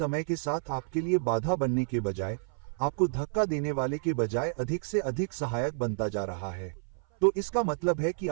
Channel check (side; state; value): left; silent; 55 dB below the other